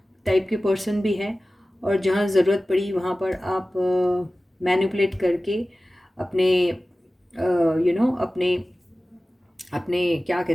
टाइप के पर्सन भी हैं और जहाँ ज़रूरत पड़ी वहाँ पर आप मैनिपुलेट करके अपने अपने क्या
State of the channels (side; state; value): both; normal; correlation 0.96